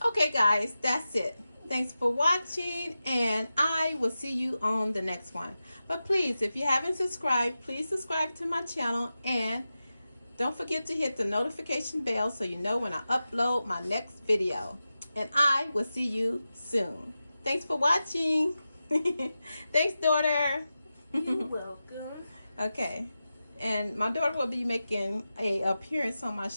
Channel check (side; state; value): both; inverted; correlation -0.93